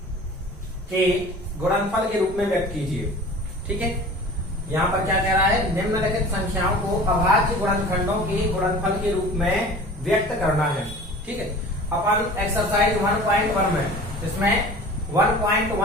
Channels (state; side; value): normal; both; correlation 0.41